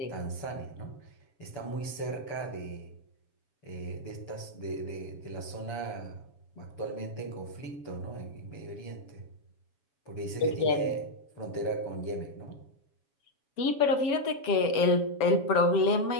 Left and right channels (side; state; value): right; late; 7.1 ms